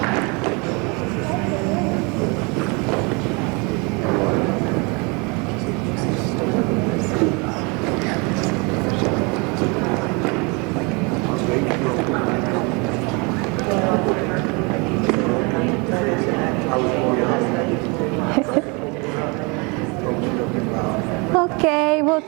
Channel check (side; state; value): left; quieter; 30.0 dB